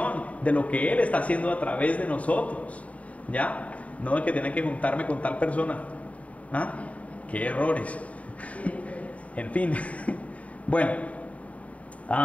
de lo que Él está haciendo a través de nosotros, ¿ya? No de que tiene que juntarme con tal persona. ¿Ah? ¡Qué errores! En fin. Bueno,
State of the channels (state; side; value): late; right; 0.067 ms